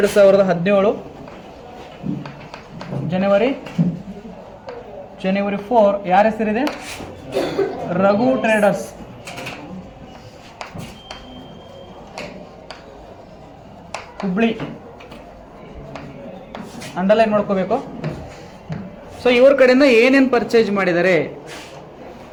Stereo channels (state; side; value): identical; both; correlation 1.00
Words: January 4 ಯಾರ ಹೆಸರಿದೆ? ರಘು ಟ್ರೇಡರ್ಸ್. ಹುಬ್ಳಿ ಅಂಡರ್ಲೈನ್ ಮಾಡ್ಕೋಬೇಕು. ಸೊ ಇವ್ರ ಕಡೆಯಿಂದ ಏನೇನು ಪರ್ಚೇಸ್ ಮಾಡಿದ್ದಾರೆ?